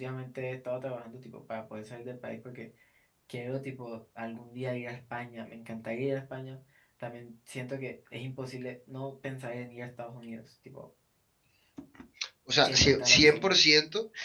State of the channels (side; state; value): both; identical; correlation 1.00